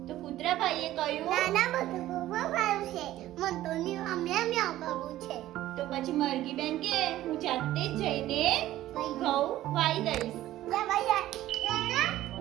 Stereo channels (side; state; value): left; quieter; 14.5 dB